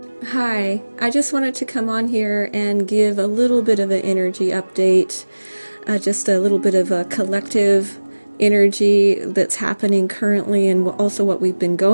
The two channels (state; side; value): inverted; both; correlation -1.00